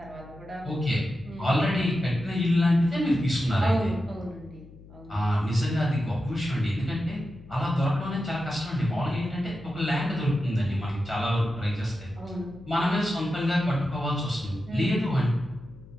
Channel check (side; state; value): left; noise; hum, 20 dB below the sound